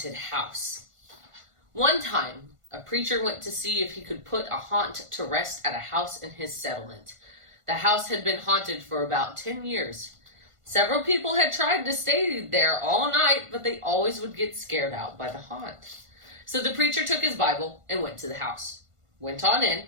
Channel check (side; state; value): left; late; 1.5 ms